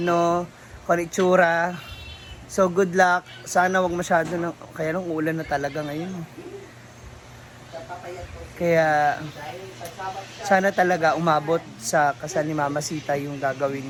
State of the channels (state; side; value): identical; both; correlation 1.00